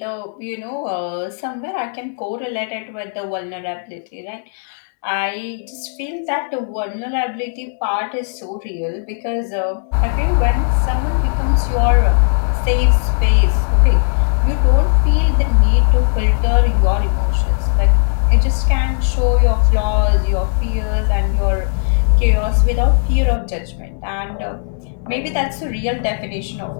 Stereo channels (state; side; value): silent; right; digital silence